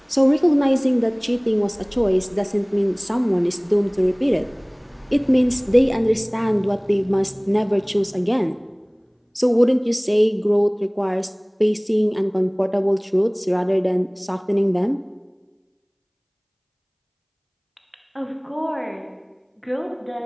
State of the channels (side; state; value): both; identical; correlation 1.00